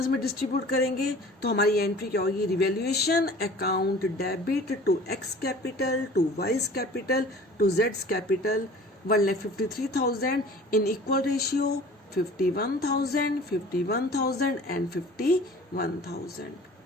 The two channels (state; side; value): normal; both; correlation 0.45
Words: में डिस्ट्रीब्यूट करेंगे। तो हमारी एंट्री क्या होगी, revaluation account debit to X capital, to Y's capital, to जेड्स capital, 1,53,000 in equal ratio 51,000, 51,000 and 51,000।